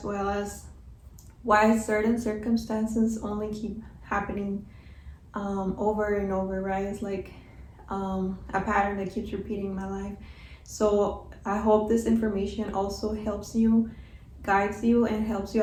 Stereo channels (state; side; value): identical; both; correlation 1.00